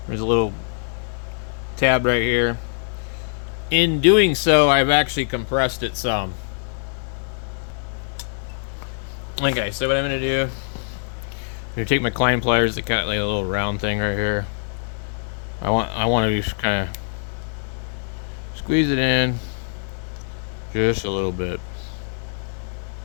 There's a little tab right here. In doing so, I've actually compressed it some. Okay, so what I'm gonna do, I'm gonna take my climb pliers that got like a little round thing right here. I want to just kind of squeeze it in just a little bit.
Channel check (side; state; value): right; silent; 63 dB below the other